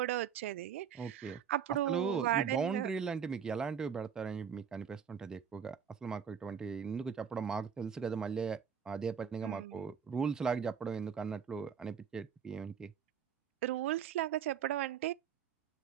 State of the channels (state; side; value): quieter; left; 7.5 dB